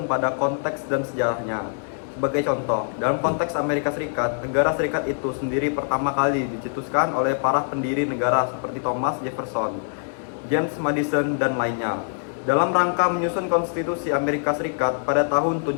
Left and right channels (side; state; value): right; silent; digital silence